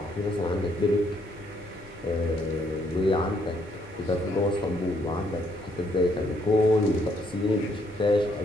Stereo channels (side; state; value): both; normal; correlation 0.71